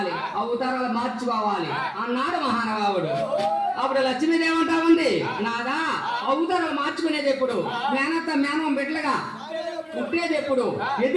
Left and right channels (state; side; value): identical; both; correlation 1.00